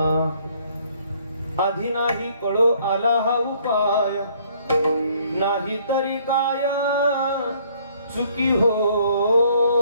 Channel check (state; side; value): inverted; both; correlation -0.62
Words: आधी नाही कळो आला हा उपाय नाही तरी काय चुकी